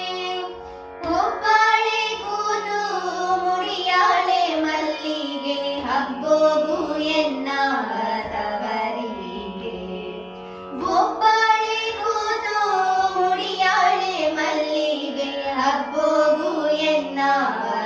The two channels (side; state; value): both; identical; correlation 1.00